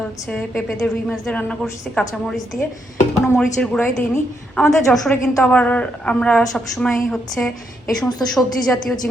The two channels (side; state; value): both; normal; correlation 0.78